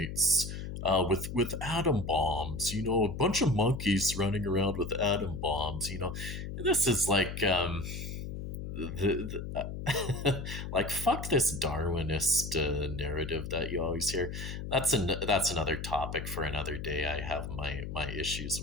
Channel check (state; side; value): noise; left; hum, 7 dB below the sound